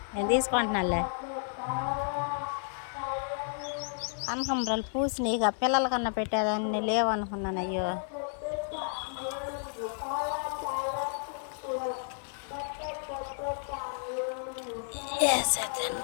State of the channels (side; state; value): right; silent; digital silence